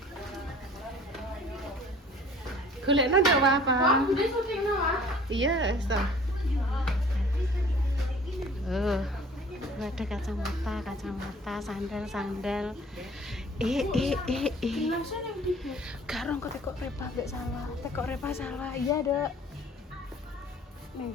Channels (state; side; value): normal; both; correlation 0.50